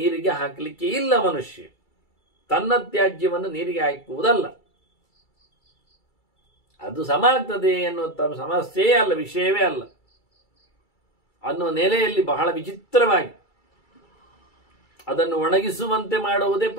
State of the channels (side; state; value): right; late; 2.3 ms